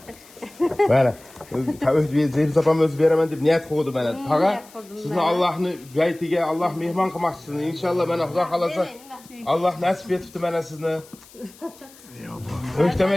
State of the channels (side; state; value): left; noise; hiss, 24 dB below the sound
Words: Mana, Zeynep opam o'zi beraman deb niyat qildi mana. Tag'a, sizni Allohning baytiga Alloh mehmon qilmoqchisini. Inshaalloh mana Xudo xolasa Alloh nasib etibdi mana sizni.